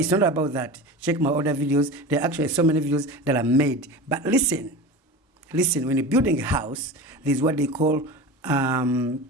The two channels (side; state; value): both; normal; correlation 0.30